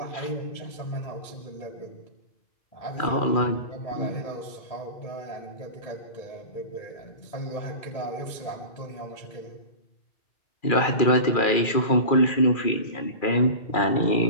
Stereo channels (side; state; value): right; late; 2.4 ms